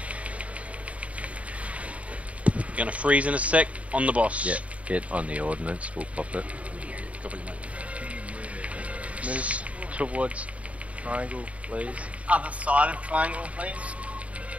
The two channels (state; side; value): late; left; 0.066 ms